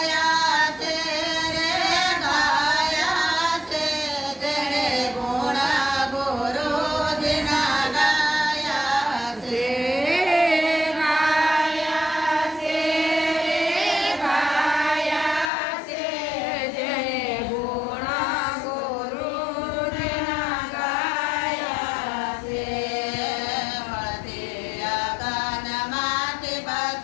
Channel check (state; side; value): drops out; right; at 15.5 s